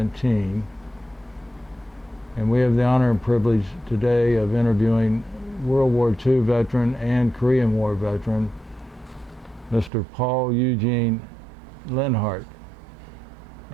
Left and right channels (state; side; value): drops out; left; at 9.9 s